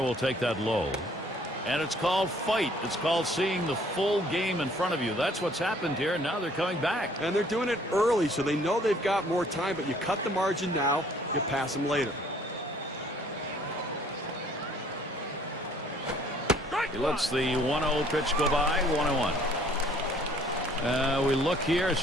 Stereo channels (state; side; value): normal; both; correlation 0.59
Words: will take that low. And it's called fight. It's called seeing the full game in front of you. That's what's happened here, and now they're coming back. And they're doing it early, so they know they've got more time, but you cut the margin now, you pass them later. He lets the 1-0 pitch go by, 1-1. We look here,